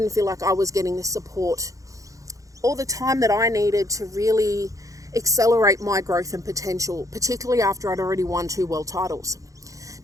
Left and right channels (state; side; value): late; left; 0.16 ms